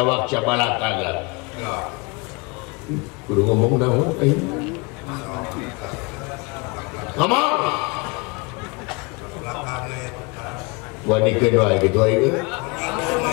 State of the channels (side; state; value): right; quieter; 28.3 dB